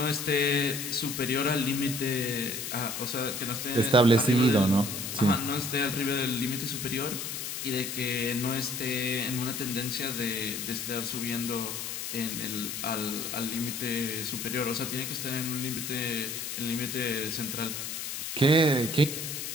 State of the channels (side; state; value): left; noise; hiss, 5 dB below the sound